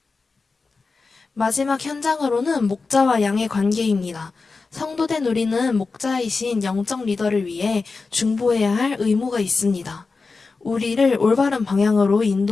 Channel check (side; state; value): right; quieter; 4.2 dB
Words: 마지막 현장으로는 목자와 양의 관계입니다. 성도된 우리는 목자이신 영적 리더를 위해 중보해야 할 의무가 있습니다. 우리를 올바른 방향으로